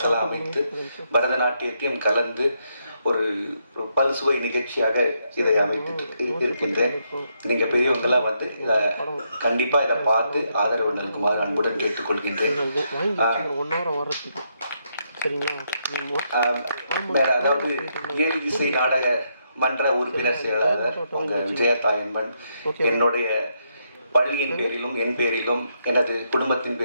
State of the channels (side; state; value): both; inverted; correlation -0.78